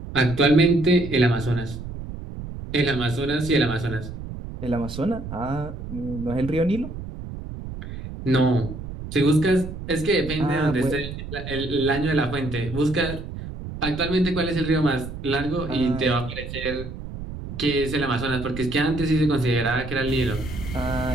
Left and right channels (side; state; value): right; noise; rumble, 9 dB below the sound